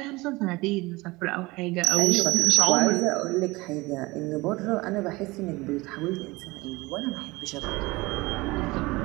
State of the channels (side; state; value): left; quieter; 22.1 dB